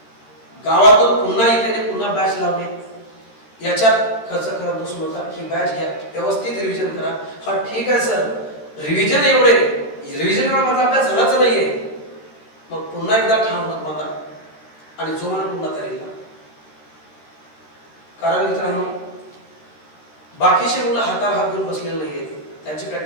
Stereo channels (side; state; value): right; late; 14 ms